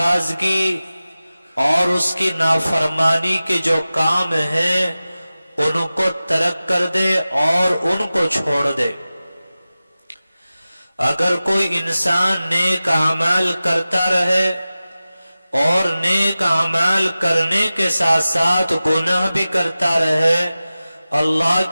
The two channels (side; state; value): both; inverted; correlation -0.96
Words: اور اس کی نافرمانی کے جو کام ہیں ان کو ترک کر دے اور ان کو چھوڑ دے۔ اگر کوئی انسان نیک اعمال کرتا رہے اور نیک اعمال کرنے کے ساتھ ساتھ گناہ بھی کرتا رہے، اللہ